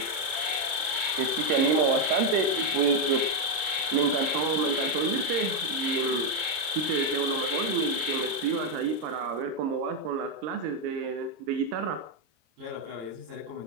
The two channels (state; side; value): late; left; 26 ms